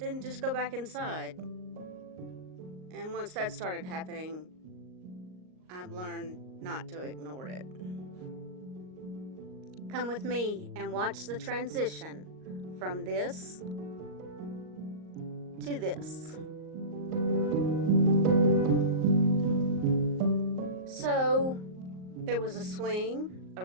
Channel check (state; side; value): late; left; 38 ms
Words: just go back inside. And once that started happening, I've learned not to ignore it. Come with me and watch the transition from this to this. So, there was a swing, a